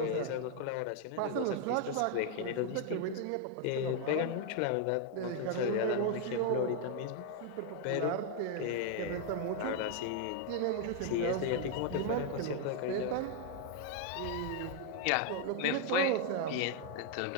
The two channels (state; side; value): different; both; correlation 0.00